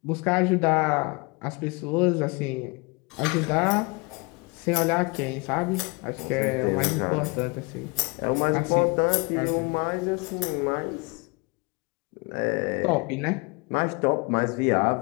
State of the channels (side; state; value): right; quieter; 28.1 dB